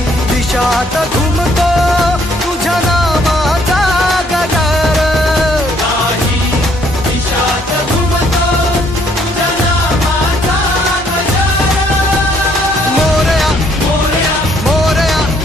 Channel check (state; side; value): normal; both; correlation 0.66